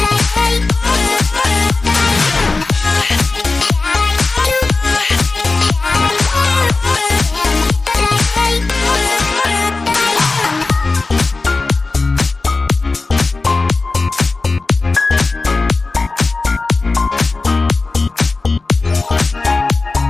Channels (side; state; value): right; quieter; 3.6 dB